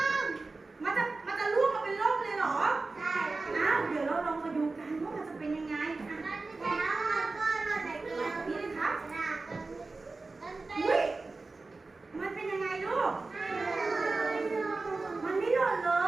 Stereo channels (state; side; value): quieter; left; 3.6 dB